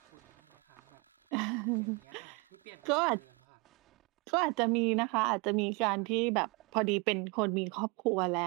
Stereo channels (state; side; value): quieter; left; 29.8 dB